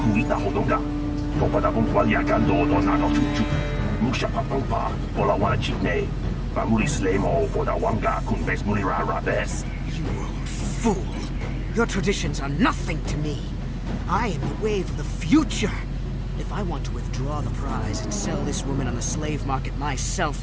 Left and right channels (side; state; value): both; identical; correlation 1.00